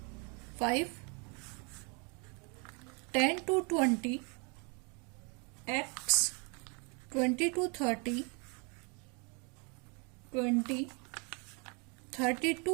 5, 10 to 20, x, 20 to 30, 20, 30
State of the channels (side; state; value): left; quieter; 33.6 dB